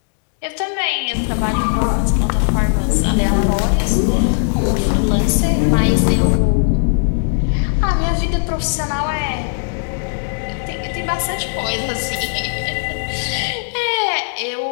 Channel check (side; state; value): right; silent; digital silence